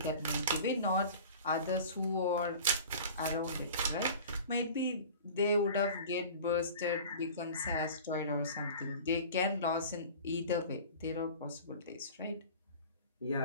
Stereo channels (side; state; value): both; inverted; correlation -0.40